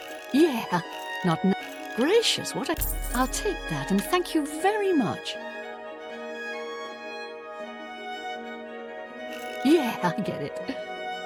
Yeah. Not now. Gracious, what a... I'll take that and thank you very much. Yeah, I get it.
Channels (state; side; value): identical; both; correlation 1.00